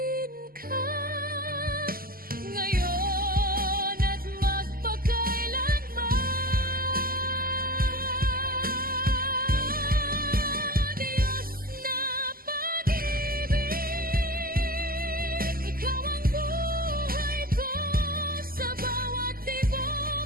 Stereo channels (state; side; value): late; left; 0.42 ms